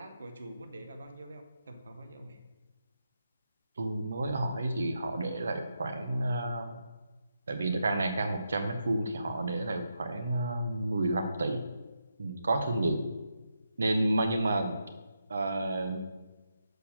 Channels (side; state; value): both; inverted; correlation -0.84